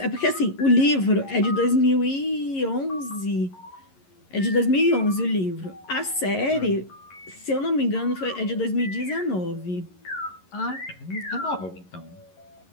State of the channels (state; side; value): late; right; 11 ms